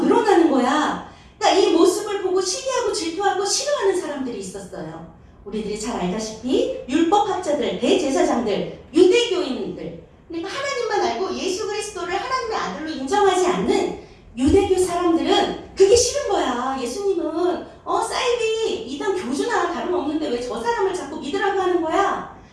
늘어나는 거야. 그러니까 이 모습을 보고 시기하고 질투하고 싫어하는 사람들이 있었어요. 우리들이 잘 알다시피 율법학자들, 대제사장들, 유대교인들, 그러니까 하나님만 알고 예수 그리스도를 하나님의 아들로 인정하지 않는 유대교 사람들은 그게 싫은 거야. 예수님은 사이비 이단 교주나 다름없는데 왜 저 사람을 자꾸 믿으라고 하는 거야.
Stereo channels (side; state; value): both; identical; correlation 1.00